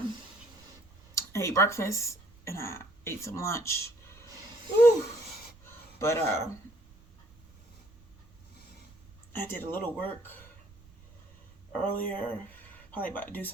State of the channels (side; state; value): right; noise; rumble, 26 dB below the sound